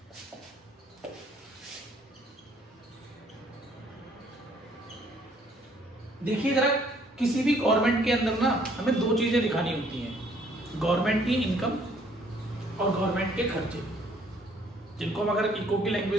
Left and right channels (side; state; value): both; normal; correlation 0.62